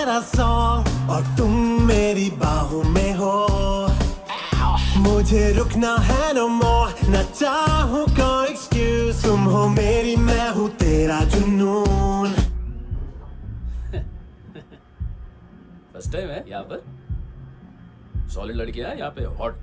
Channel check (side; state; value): both; identical; correlation 1.00